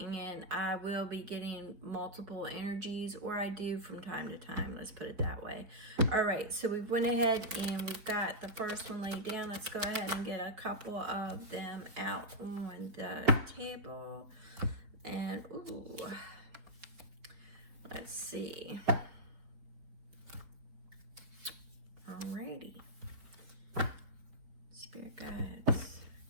I will be getting multiple energies, or I do from time to time, let's put it that way. All right, so we went ahead and we've got the first one laid down. Let's go ahead and get a couple of them out on the table. And ooh, let's see. Alrighty. Spirit guides,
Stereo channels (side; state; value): left; late; 4.5 ms